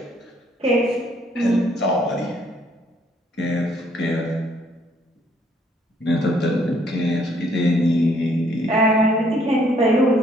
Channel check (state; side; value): normal; both; correlation 0.66